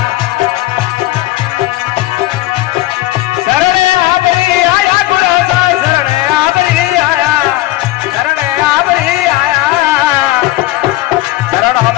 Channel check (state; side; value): quieter; right; 16.7 dB